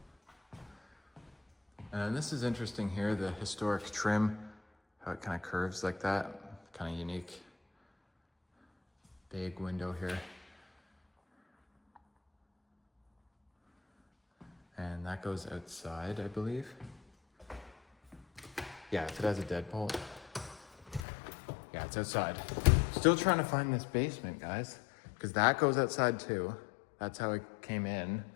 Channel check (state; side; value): drops out; right; at 21.0 s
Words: And this is interesting here, the historic trim, how it kind of curves like that, kind of unique. Big window here. And that goes outside, I believe. Yeah, if it has a deadbolt. Yeah, it's outside. Still trying to find this basement, guys, because that goes outside too. That's how it came in.